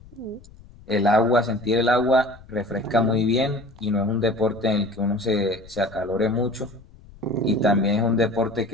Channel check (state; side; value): noise; left; rumble, 22 dB below the sound